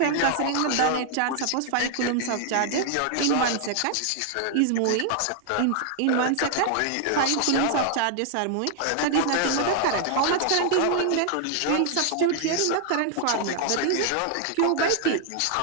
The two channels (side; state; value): both; different; correlation 0.00